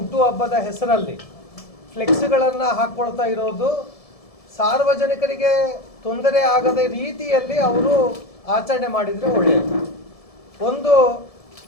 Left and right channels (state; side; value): late; right; 1.7 ms